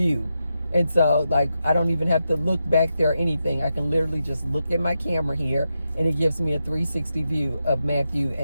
And so like I don't even have to look back there or anything. I can literally just look at my camera here, and it gives me a 360 view of Matthew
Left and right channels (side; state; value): both; inverted; correlation -0.87